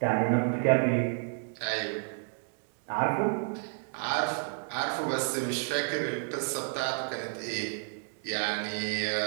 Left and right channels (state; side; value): silent; left; 57 dB below the other